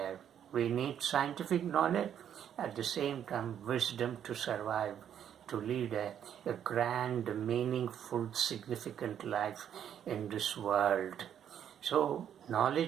We need scientific knowledge, at the same time wisdom to survive, to lead a grand, meaningful, significant life in this world. So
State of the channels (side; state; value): left; quieter; 9.4 dB